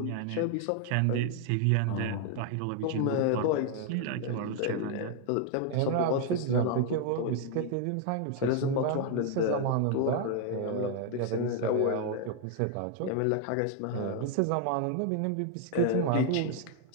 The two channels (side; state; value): both; different; correlation 0.00